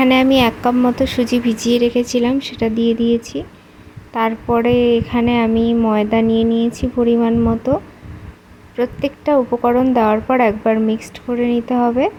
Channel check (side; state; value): both; identical; correlation 1.00